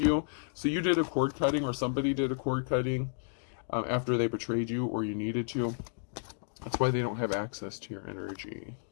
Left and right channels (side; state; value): right; silent; digital silence